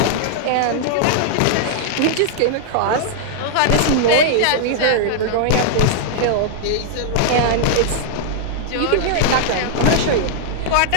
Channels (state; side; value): different; both; correlation -0.01